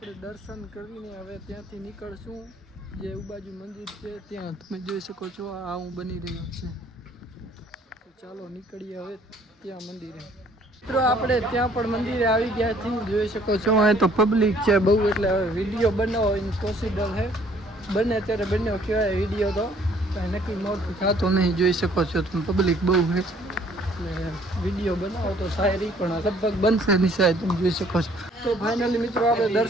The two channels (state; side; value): normal; both; correlation 0.60